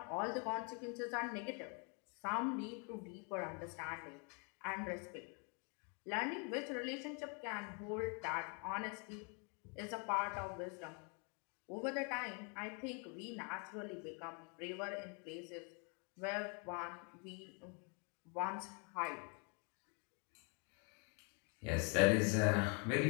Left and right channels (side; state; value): right; quieter; 36.6 dB